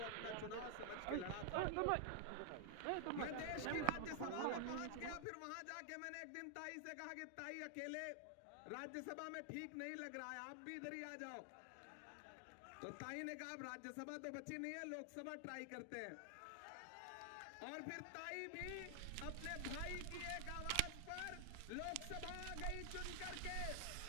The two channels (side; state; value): both; different; correlation 0.00